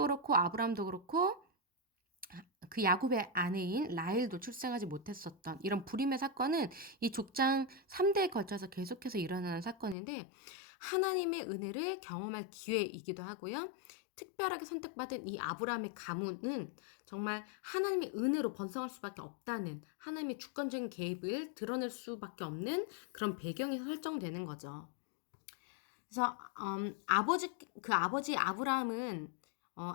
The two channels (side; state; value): right; drops out; at 10.0 s